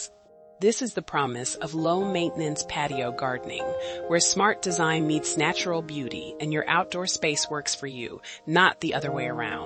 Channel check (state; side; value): identical; both; correlation 1.00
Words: This is the promise of low-maintenance patio gardening, where smart design meets natural beauty and your outdoor space works for you, not the other way